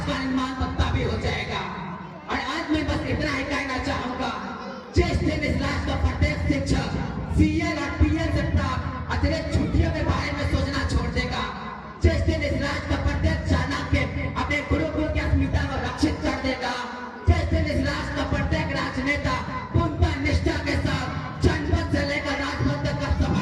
का निर्माण तो तभी हो जाएगा। और आज मैं बस इतना ही कहना चाहूंगा, जिस दिन इस राष्ट्र का प्रत्येक शिक्षक CL और PL से प्राप्त अतिरिक्त छुट्टियों के बारे में सोचना छोड़ देगा, जिस दिन इस राष्ट्र का प्रत्येक चाणक्य अपने गुरुकुल की अस्मिता को रक्षित कर देगा, जिस दिन इस राष्ट्र का प्रत्येक राजनेता पूर्णतः निष्ठा के साथ जनपद से लेकर राजपद तक का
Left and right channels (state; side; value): identical; both; correlation 1.00